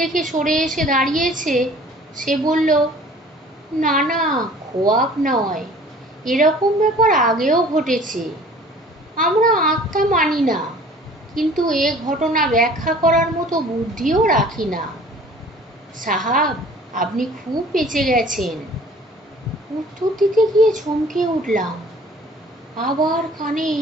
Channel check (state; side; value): normal; both; correlation 0.49